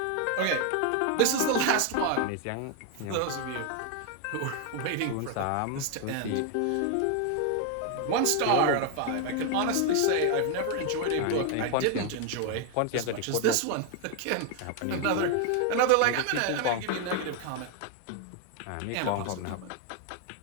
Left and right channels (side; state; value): both; different; correlation 0.01